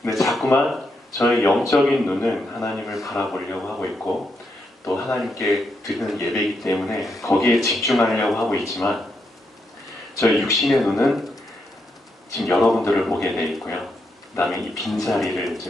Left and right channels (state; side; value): normal; both; correlation 0.81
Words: 근데 자꾸만 저의 영적인 눈은 하나님을 바라보려고 하고 있고 또 하나님께 드리는 예배이기 때문에 거기에 집중하려고 하고 있지만 저의 육신의 눈은 지금 여러분들을 보게 돼 있고요. 그 다음에 이 빈자리를